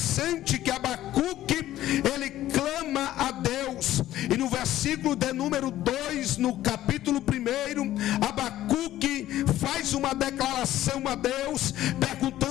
é que Abacuque, ele clama a Deus, e no versículo de número 2, no capítulo 1, Abacuque faz uma declaração a Deus,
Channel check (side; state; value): right; quieter; 13.8 dB